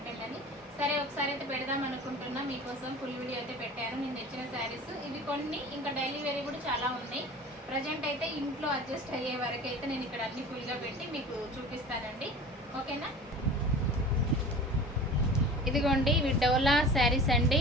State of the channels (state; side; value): normal; both; correlation 0.39